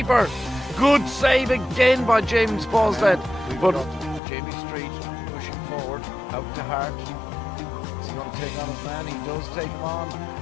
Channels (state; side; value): drops out; right; at 4.2 s